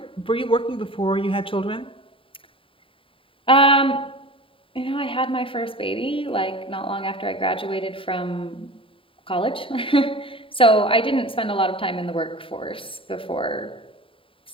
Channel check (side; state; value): right; late; 0.26 ms